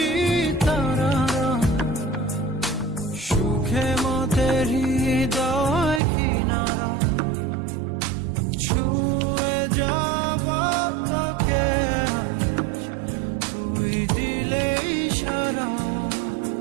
তারা, সুখে মতে হৃদয় কিনারা। ছুঁয়ে যাব তোকে আজ, তুই দিলে ইশারা।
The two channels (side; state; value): left; drops out; at 6.0 s